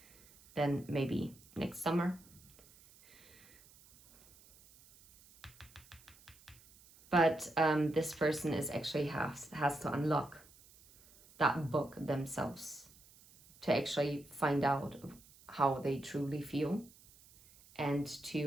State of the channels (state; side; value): noise; right; hiss, 25 dB below the sound